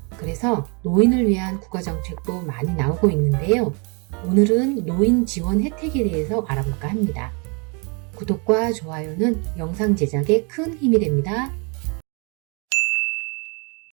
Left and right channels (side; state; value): left; quieter; 33.3 dB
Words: 그래서 노인을 위한 국가정책도 많이 나오고 있는데요. 오늘은 노인 지원 혜택에 대해서 알아볼까 합니다. 구독과 좋아요는 영상 제작에 큰 힘이 됩니다.